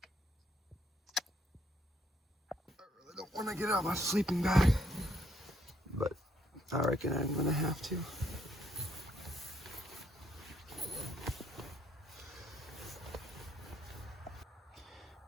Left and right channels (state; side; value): normal; both; correlation 0.70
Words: I really don't want to get out my sleeping bag, but I reckon I'm gonna have to.